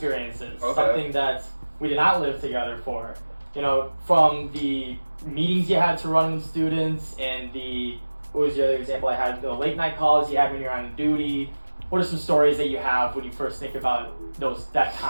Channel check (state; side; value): inverted; both; correlation -1.00